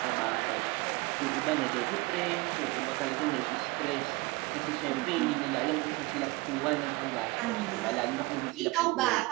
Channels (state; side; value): quieter; left; 23.5 dB